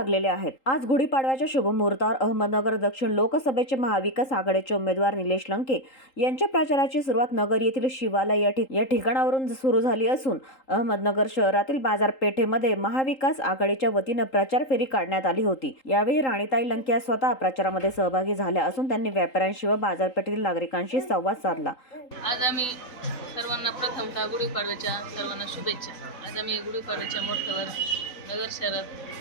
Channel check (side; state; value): right; late; 3.8 ms